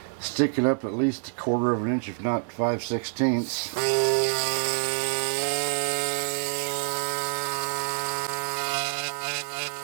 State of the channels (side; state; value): left; silent; digital silence